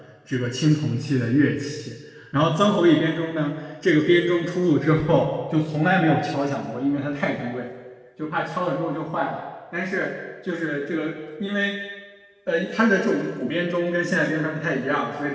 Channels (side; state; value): both; identical; correlation 1.00